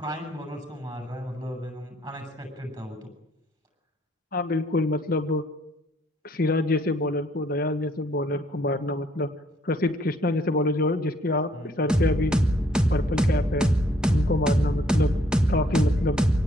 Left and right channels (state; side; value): normal; both; correlation 0.65